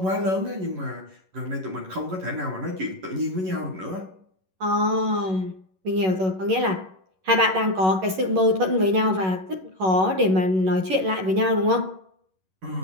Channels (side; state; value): left; late; 11 ms